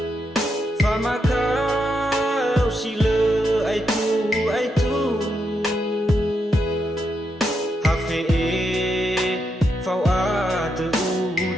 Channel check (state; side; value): normal; both; correlation 0.82